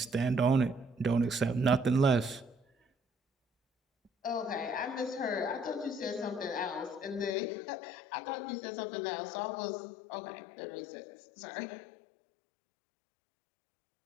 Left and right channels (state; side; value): drops out; right; at 7.4 s